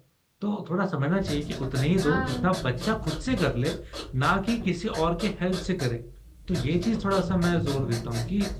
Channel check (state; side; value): identical; both; correlation 1.00